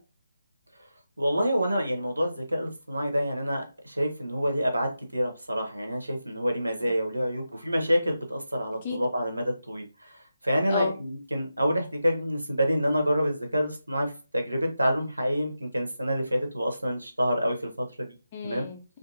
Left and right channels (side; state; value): both; inverted; correlation -0.90